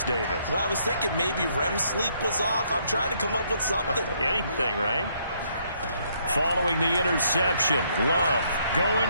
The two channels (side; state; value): both; inverted; correlation -0.70